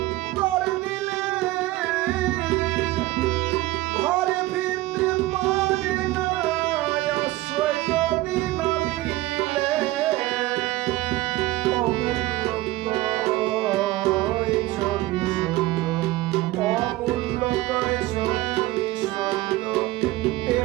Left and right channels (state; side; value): quieter; left; 17.9 dB